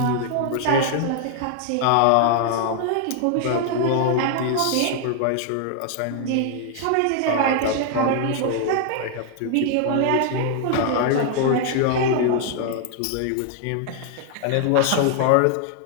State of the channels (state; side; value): different; both; correlation 0.00